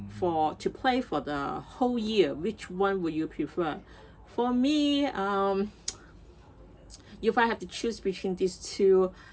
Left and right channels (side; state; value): both; identical; correlation 1.00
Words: to play for the whole year, which one would you prefer? For me, if I have to choose between these 2,